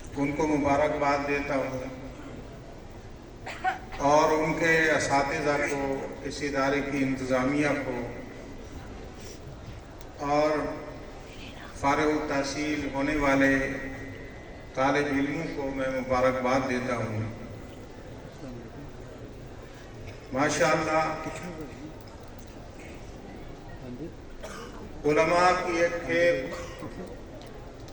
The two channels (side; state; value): both; identical; correlation 1.00